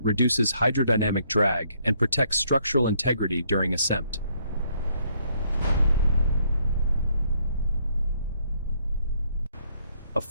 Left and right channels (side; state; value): both; inverted; correlation -0.69